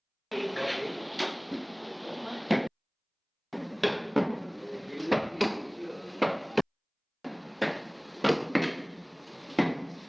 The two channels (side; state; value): both; identical; correlation 1.00